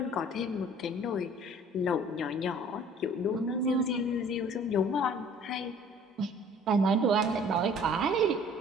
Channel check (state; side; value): normal; both; correlation 0.51